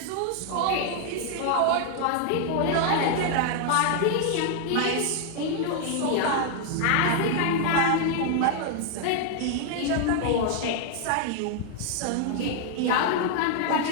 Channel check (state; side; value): different; both; correlation 0.00